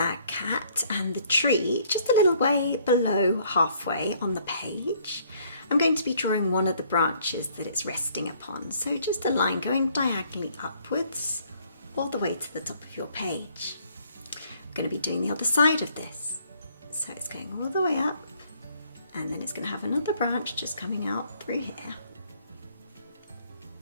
cat and the tree, just a little way below halfway on the page. I'm going to be drawing one of the branches that it's resting upon. So just a line going diagonally upwards all the way to the top of your page. I'm going to be doing the other side of this. So it's going all the way up and then it's going to have another branch just coming out through here.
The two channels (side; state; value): both; inverted; correlation -0.63